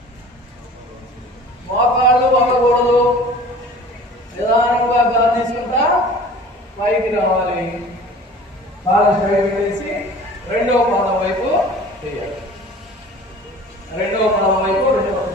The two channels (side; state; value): both; normal; correlation 0.44